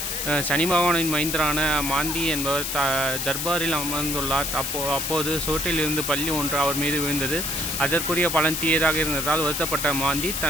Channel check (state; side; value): noise; left; hiss, 2 dB below the sound